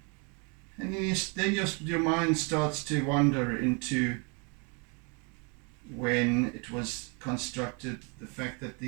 and then your mind starts to wander into when it was constructed, the fact that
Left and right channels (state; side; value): quieter; left; 33.2 dB